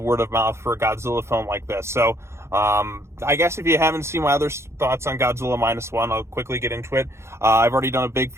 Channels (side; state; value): left; late; 0.13 ms